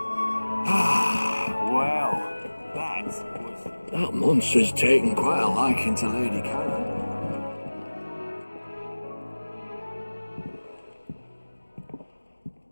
That monster's taken quite a liking to Lady Karen.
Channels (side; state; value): both; inverted; correlation -1.00